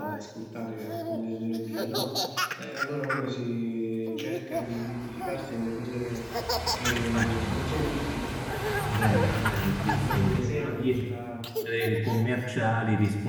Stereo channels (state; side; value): identical; both; correlation 1.00